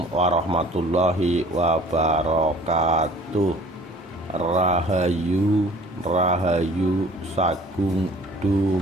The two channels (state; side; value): normal; both; correlation 0.51